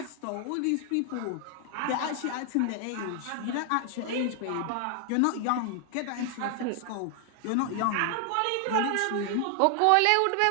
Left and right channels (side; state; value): both; different; correlation 0.00